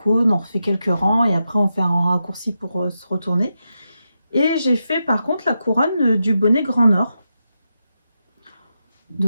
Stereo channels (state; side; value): inverted; both; correlation -0.87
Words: on refait quelques rangs et après on fait un raccourci pour se retourner. Et j'ai fait par contre la couronne du bonnet Grand Nord.